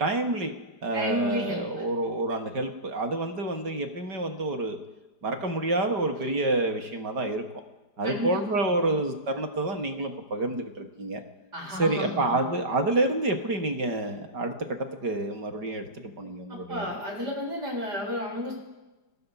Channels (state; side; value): late; left; 4.9 ms